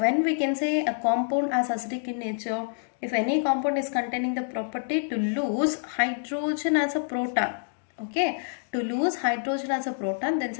we can say a compound as acidic in nature, if any compound is containing the property to lose hydrogen as a proton, okay, to lose hydrogen as a proton, then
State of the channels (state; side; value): silent; right; digital silence